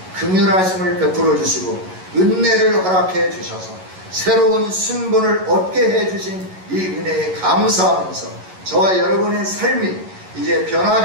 긍휼하심을 베풀어 주시고 은혜를 허락해 주셔서 새로운 신분을 얻게 해 주신 이 은혜에 감사하면서 저와 여러분의 삶이 이제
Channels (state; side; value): late; left; 11 ms